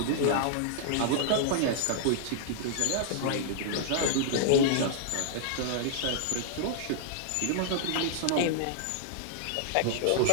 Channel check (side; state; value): both; different; correlation -0.01